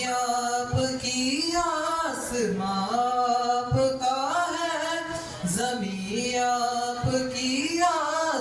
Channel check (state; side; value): identical; both; correlation 1.00